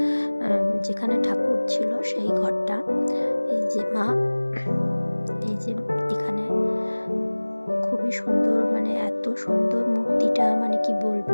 যেখানে ঠাকুর ছিল সেই ঘরটা। এই যে মা, এই যে এখানে খুবই সুন্দর, মানে এত সুন্দর মূর্তিটা, মানে কি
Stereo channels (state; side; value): inverted; both; correlation -1.00